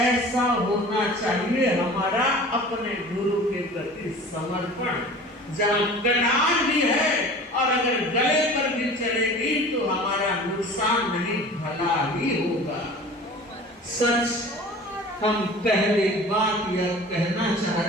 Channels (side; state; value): both; normal; correlation 0.41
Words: होना चाहिए हमारा अपने गुरु के प्रति समर्पण। जहाँ कटान भी है और अगर गले पर भी चलेगी तो हमारा नुकसान नहीं, भला ही होगा। सच हम पहली बात यह कहना चाह